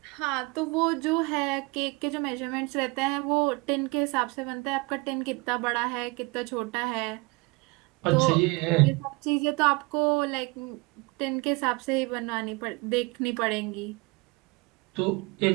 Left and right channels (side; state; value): left; quieter; 26.4 dB